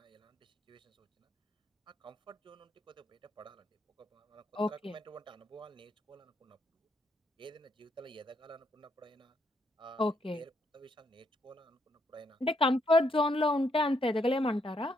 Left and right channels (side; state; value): both; normal; correlation 0.75